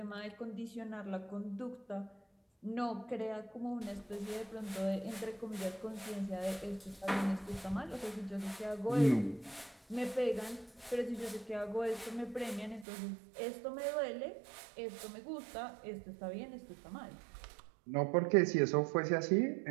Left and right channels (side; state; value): left; drops out; at 12.9 s